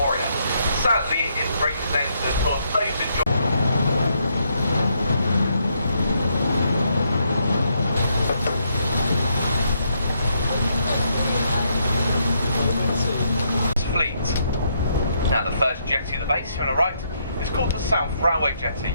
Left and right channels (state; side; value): inverted; both; correlation -0.75